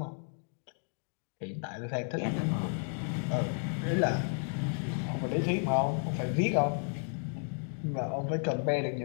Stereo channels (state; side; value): silent; right; 56 dB below the other